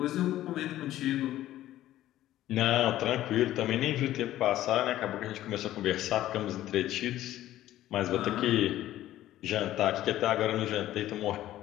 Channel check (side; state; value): right; quieter; 13.9 dB